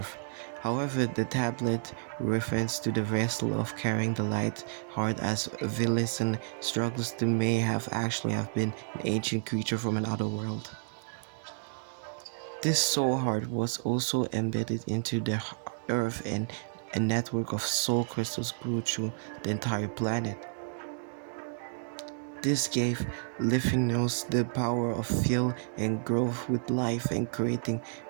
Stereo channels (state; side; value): silent; left; digital silence